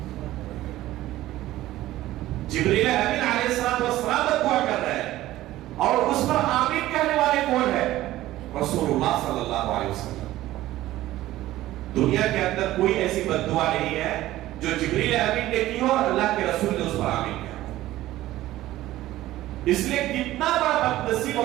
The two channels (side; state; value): left; quieter; 15.4 dB